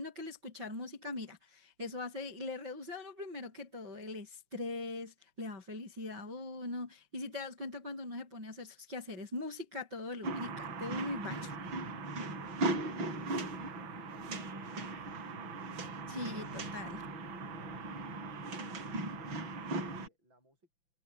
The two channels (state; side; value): late; left; 5.8 ms